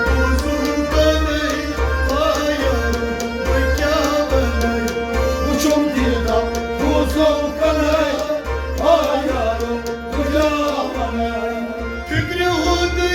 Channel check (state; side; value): identical; both; correlation 1.00